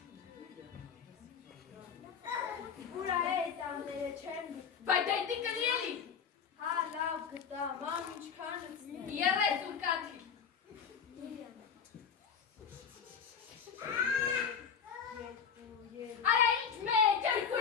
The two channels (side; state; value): right; quieter; 6.9 dB